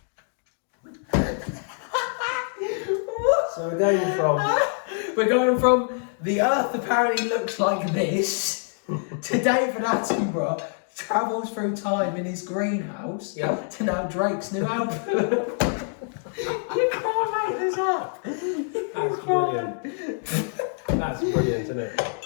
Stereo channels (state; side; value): silent; right; 61 dB below the other